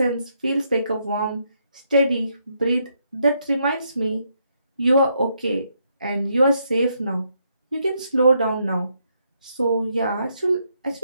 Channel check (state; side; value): inverted; both; correlation -0.77